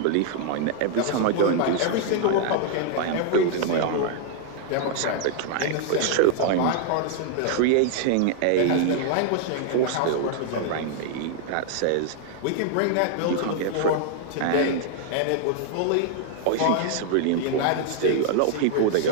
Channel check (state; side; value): different; both; correlation 0.00